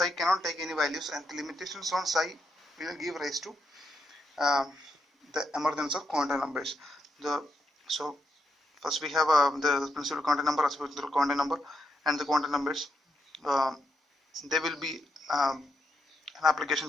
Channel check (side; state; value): both; normal; correlation 0.81